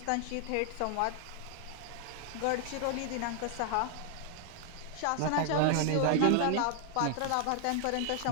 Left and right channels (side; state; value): both; different; correlation 0.00